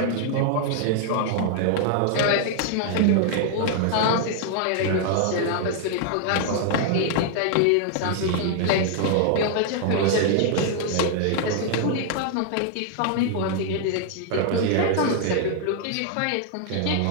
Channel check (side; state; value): both; different; correlation 0.00